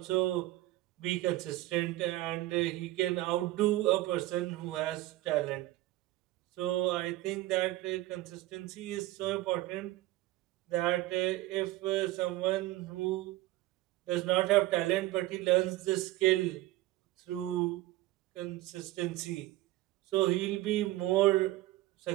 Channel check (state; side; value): quieter; left; 17.0 dB